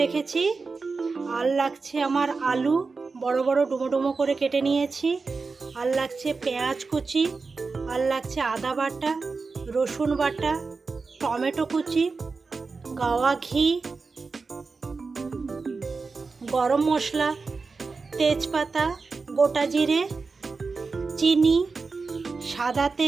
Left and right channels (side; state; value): left; quieter; 4.4 dB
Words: রেখেছি। আর লাগছে আমার আলু, বড় বড় ডুমো ডুমো করে কেটে নিয়েছি। আর লাগছে পেঁয়াজ কুচি, আর লাগছে আদা বাটা, রসুন বাটা, টমেটো কুচি, গাওয়া ঘি, গরম মশলা, তেজপাতা, গোটা জিরে, চিনি, সাদা